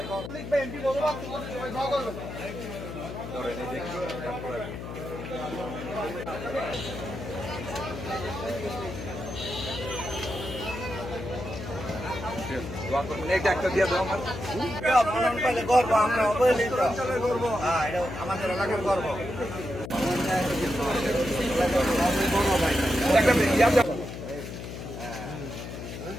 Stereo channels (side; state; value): left; noise; hum, 9 dB below the sound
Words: ধরেন এই দেখি দোয়া করবেন। এইটা একটা দিয়ে দাও আমার গর্ব, আমরা অবহেলিত গর্ব, এটা আমাদের এলাকার গর্ব।